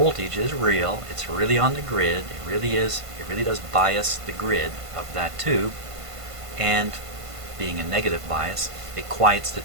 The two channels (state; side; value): late; left; 1.5 ms